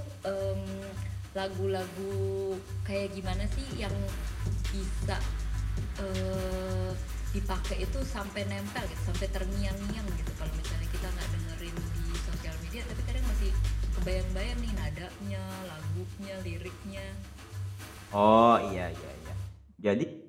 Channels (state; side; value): identical; both; correlation 1.00